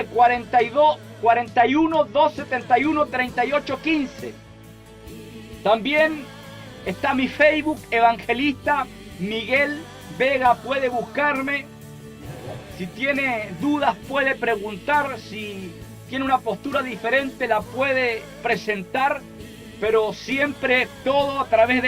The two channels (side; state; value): both; identical; correlation 1.00